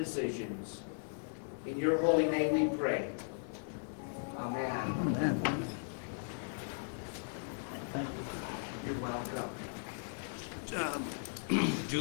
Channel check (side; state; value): right; silent; digital silence